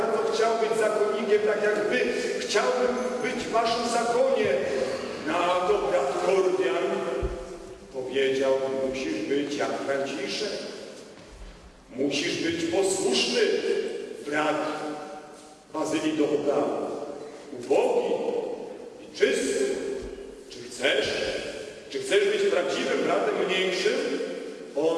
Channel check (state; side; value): identical; both; correlation 1.00